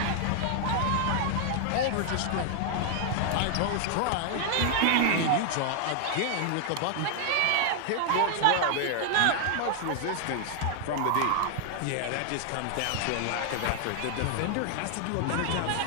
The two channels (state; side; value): different; both; correlation 0.00